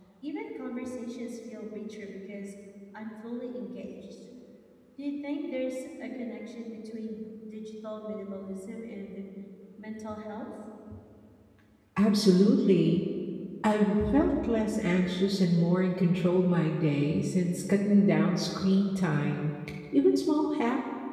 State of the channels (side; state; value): both; identical; correlation 1.00